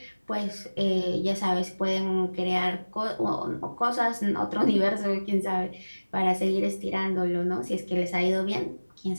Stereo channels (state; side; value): inverted; both; correlation -1.00